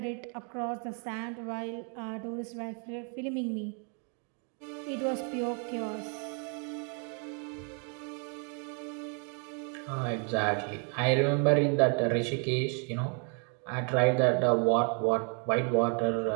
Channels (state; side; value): quieter; left; 39.5 dB